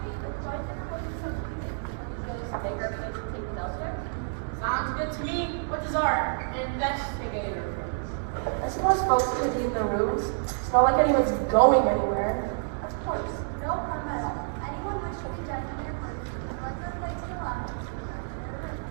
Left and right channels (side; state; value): left; silent; digital silence